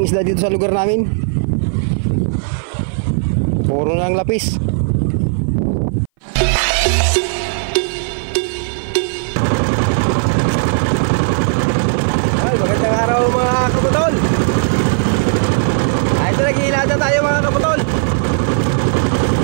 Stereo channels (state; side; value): silent; left; 59 dB below the other